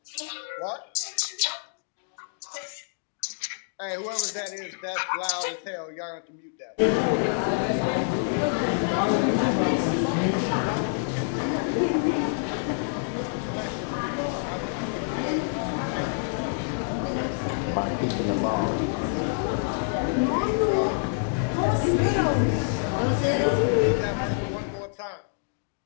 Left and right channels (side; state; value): right; silent; digital silence